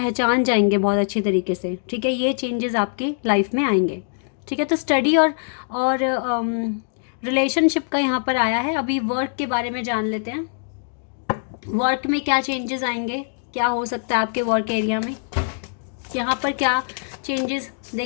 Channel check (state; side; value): silent; right; digital silence